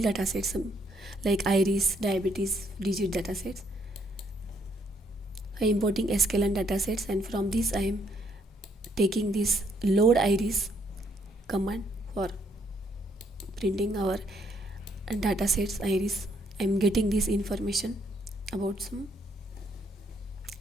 datasets like iris, diabetes, digit datasets. I am importing sklearn datasets, and from this I am taking this load iris command for printing our datasets iris. I am getting this information about some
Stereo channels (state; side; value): normal; both; correlation 0.71